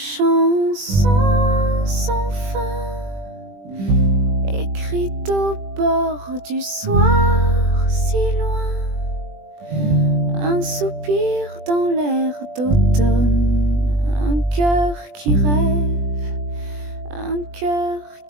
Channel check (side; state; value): left; late; 20 ms